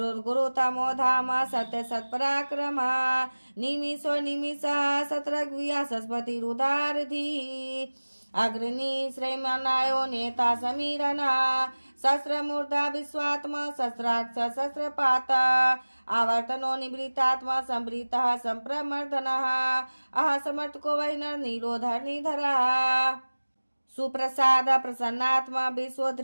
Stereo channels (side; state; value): both; inverted; correlation -1.00